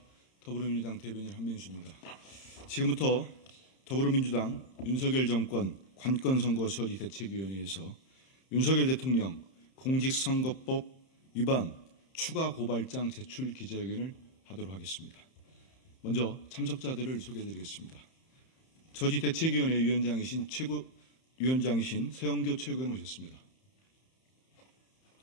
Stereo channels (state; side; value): late; right; 31 ms